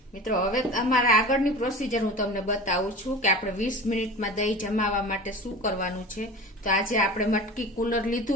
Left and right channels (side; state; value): both; normal; correlation 0.34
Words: મિત્રો હવે અમારા આગળની પ્રોસીજર હું તમને બતાવું છું કે આપણે 20 મિનિટમાં દહીં જમાવવા માટે શું કરવાનું છે। તો આજે આપણે મટકી કુલર